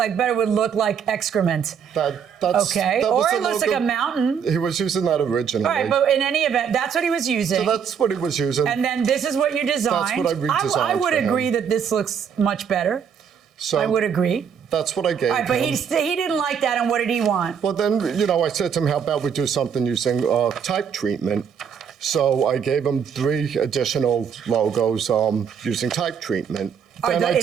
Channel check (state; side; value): quieter; left; 7.3 dB